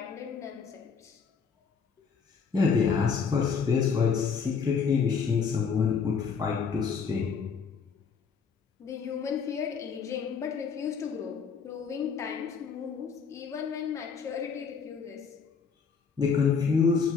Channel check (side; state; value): right; quieter; 5.9 dB